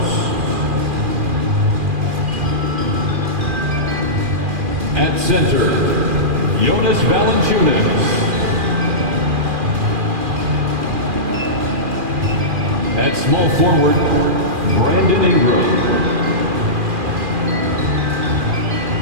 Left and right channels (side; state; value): left; late; 2.4 ms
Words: At center, Jonas Valanciunas. At small forward, Brandon Ingram.